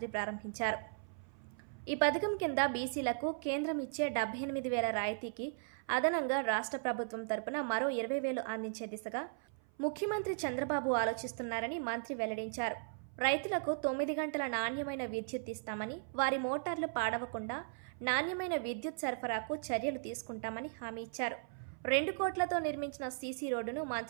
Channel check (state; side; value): silent; left; 53 dB below the other